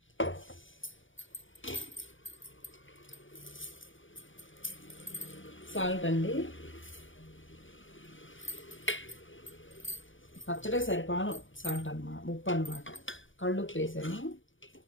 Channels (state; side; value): late; right; 0.57 ms